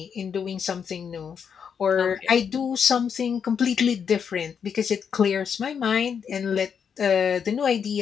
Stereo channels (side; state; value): right; quieter; 7.1 dB